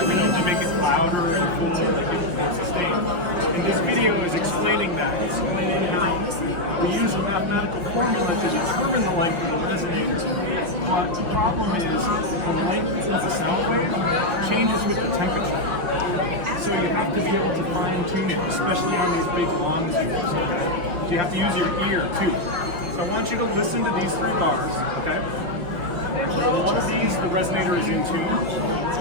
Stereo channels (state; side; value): late; left; 5.6 ms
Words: the note. They make it louder and cooler and give it more sustain. And this video is explaining that, explaining how we use a mathematical formula to determine the length of the resonator. But the problem is the length of the sound wave changes with the temperature. So you have to be able to fine tune it, especially on these big long tubes. Okay? So you have to use your ear too. So I want you to listen to these 3 bars, okay? One of these, the resonator is in tune.